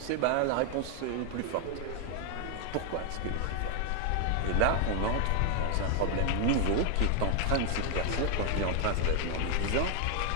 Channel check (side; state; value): both; different; correlation 0.00